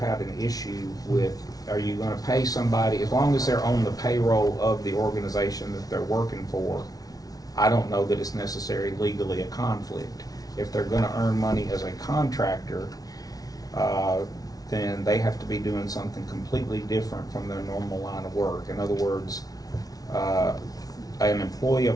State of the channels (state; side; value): late; right; 0.18 ms